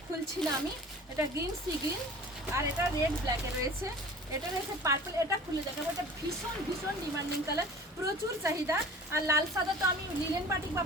খুলছি না আমি, এটা গ্রিন সি গ্রিন, আর এটা রেড ব্ল্যাকে রয়েছে। এটা রয়েছে পার্পল, এটা খুলে দেখাবো। এটা ভীষণ ভীষণ ডিমান্ডিং কালার, প্রচুর চাহিদা। আর লাল সাদা তো আমি লিনেন বাটিক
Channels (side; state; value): both; normal; correlation 0.42